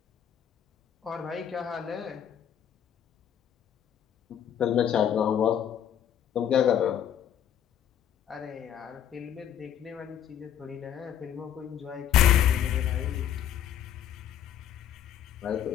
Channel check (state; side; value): quieter; right; 9.6 dB